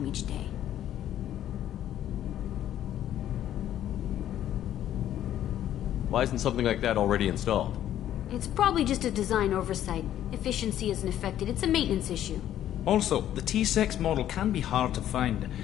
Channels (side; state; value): right; quieter; 11.6 dB